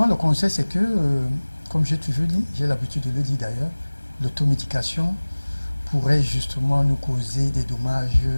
le conseil c'est que, comme j'ai toujours dit, j'ai l'habitude de le dire d'ailleurs, l'automédication pourrait justement nous causer des dommages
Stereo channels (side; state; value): both; inverted; correlation -1.00